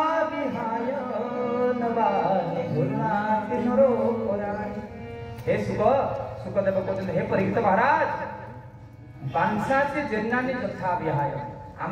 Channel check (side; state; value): both; identical; correlation 1.00